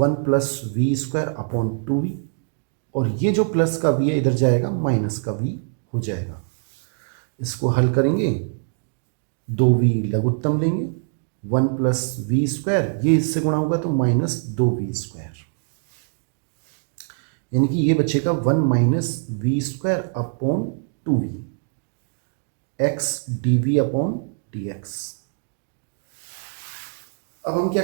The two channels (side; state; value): left; silent; 60 dB below the other